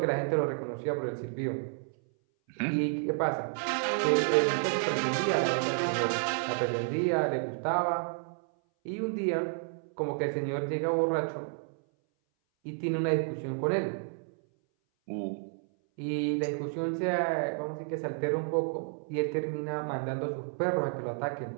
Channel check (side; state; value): left; silent; 57 dB below the other